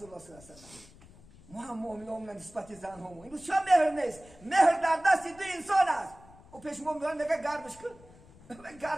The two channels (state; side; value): noise; left; rumble, 23 dB below the sound